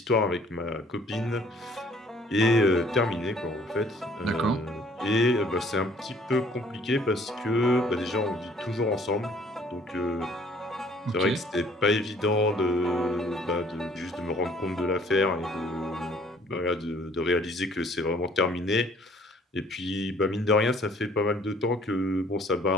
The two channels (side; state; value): both; normal; correlation 0.58